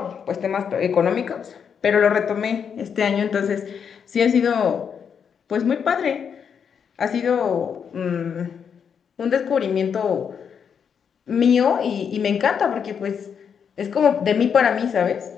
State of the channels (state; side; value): quieter; right; 7.2 dB